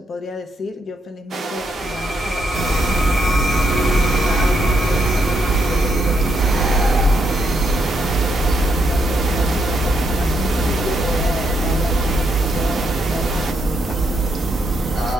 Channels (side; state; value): both; normal; correlation 0.78